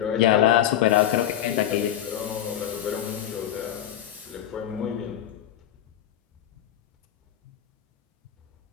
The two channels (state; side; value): quieter; right; 11.2 dB